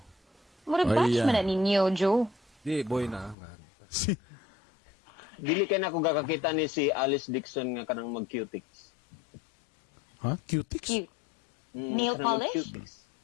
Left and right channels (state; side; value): drops out; right; at 3.4 s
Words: Murag Ay, batch yan. man na ninyo, Joe. Di, boy na. Si- Dili kay na ko gakakita ni si Alice Dixon nga kanang mag-cutics. Ha? Cutics? Cute. Nail kanang polish? mag-cutics.